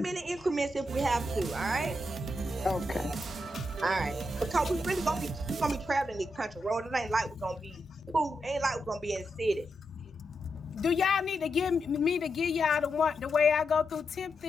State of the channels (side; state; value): both; normal; correlation 0.85